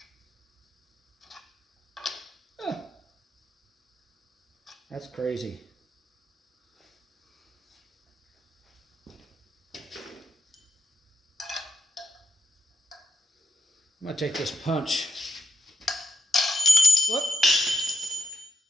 That's crazy. I'm going to take this punch. Whoop.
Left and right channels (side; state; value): both; normal; correlation 0.82